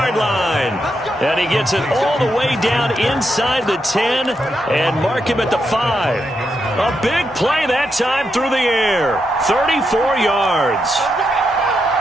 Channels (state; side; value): normal; both; correlation 0.83